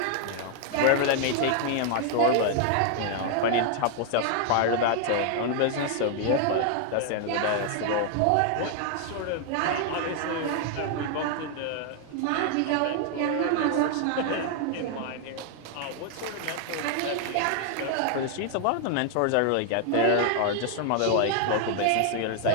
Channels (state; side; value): different; both; correlation 0.00